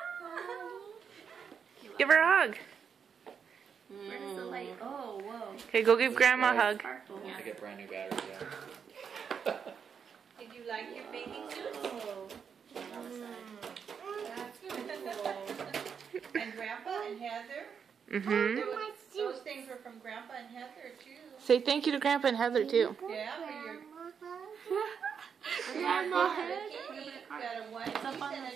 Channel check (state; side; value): quieter; left; 6.9 dB